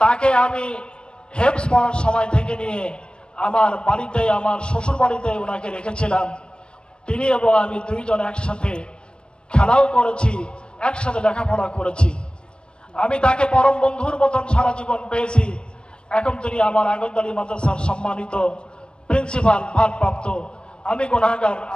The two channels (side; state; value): right; late; 0.054 ms